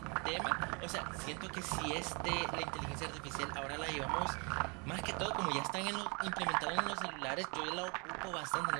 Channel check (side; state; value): left; quieter; 31.8 dB